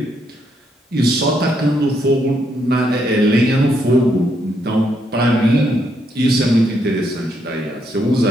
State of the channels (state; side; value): normal; both; correlation 0.76